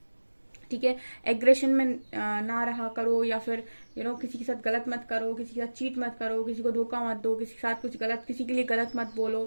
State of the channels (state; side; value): inverted; both; correlation -1.00